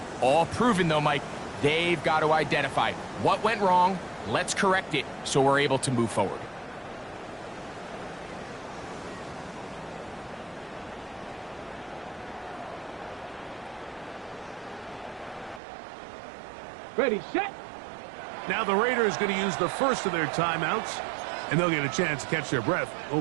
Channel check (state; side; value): drops out; left; at 15.6 s